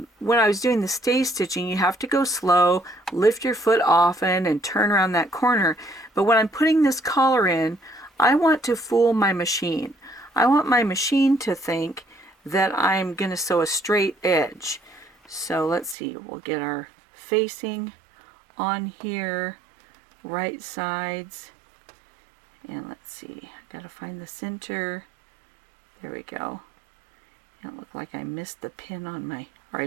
I was doing the stay stitching, you have to go slow, lift your foot often, and turn around that corner. But when I'm putting this collar in, I want to fool my machine. I want my machine to think that I'm going to sew a straight edge. So let's see, we'll get our facing on here, right sides, and let's see, I gotta find the center. There we go. It looked like I missed the pin on my, or I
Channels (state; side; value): drops out; left; at 16.0 s